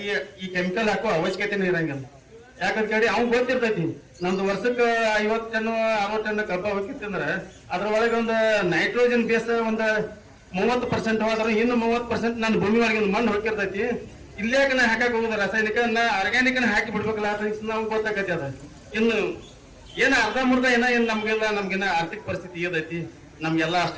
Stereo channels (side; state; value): both; identical; correlation 1.00